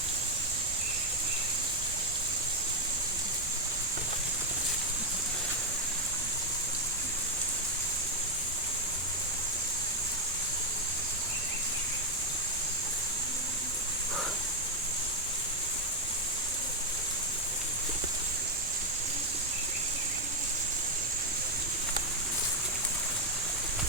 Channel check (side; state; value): both; normal; correlation 0.02